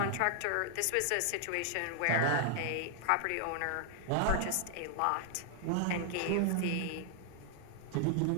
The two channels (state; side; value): different; both; correlation 0.00